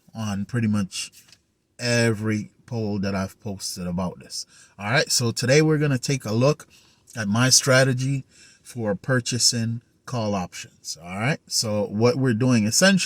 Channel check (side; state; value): both; identical; correlation 1.00